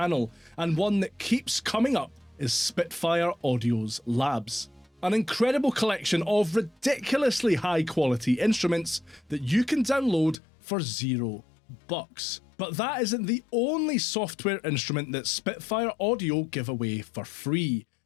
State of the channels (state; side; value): drops out; right; at 10.4 s